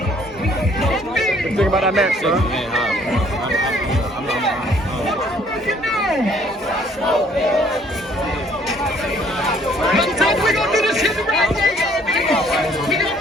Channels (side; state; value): both; normal; correlation 0.61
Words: it. What you think about that match, bro? We gonna do this shit the right way, y'all. We gonna